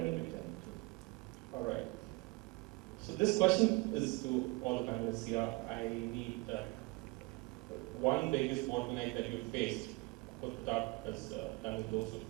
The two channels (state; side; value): quieter; left; 24.9 dB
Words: a big challenge. All right. So this question is to all the panelists here. I need one biggest bottleneck that you faced. Of course, Pratap has done with those of